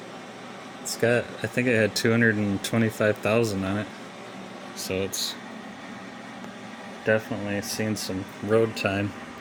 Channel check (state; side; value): identical; both; correlation 1.00